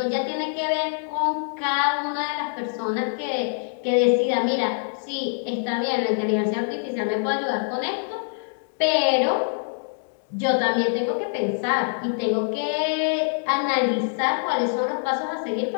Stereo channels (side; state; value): right; silent; digital silence